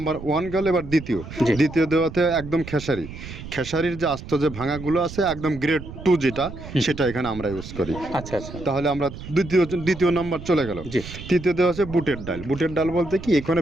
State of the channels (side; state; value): right; noise; rumble, 12 dB below the sound